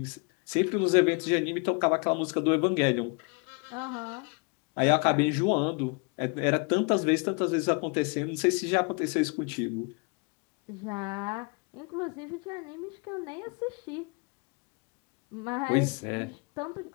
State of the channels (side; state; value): right; quieter; 33.1 dB